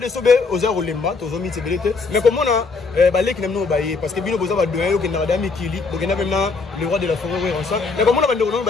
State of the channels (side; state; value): right; quieter; 4.3 dB